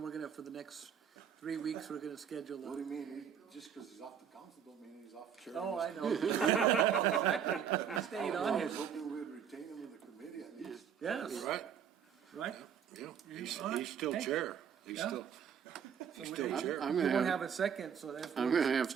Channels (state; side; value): quieter; left; 8.0 dB